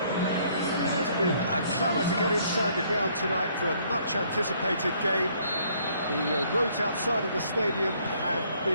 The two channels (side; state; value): both; inverted; correlation -0.64